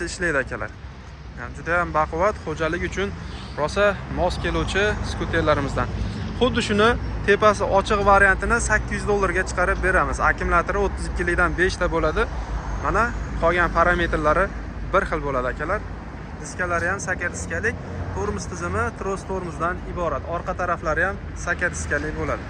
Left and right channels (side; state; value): both; identical; correlation 1.00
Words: ishlaydi akalar. Yani juda ham baquvvat, xo'jalik uchun rosa mos keluvchi skuterlarimizdan. Xuddi shuni tepasi ochiq variantini 800 dollarga chiqarib beramiz. Akkumulyatori 32 likdan 5 ta bo'ladi. Mana qolgan parametrlari bir xil bo'ladi akalar. Diskalari ham saka diskalik, tormoz tizimi tros tormozdan iborat. Orqa taraflari ham saka diskalik bo'ladi.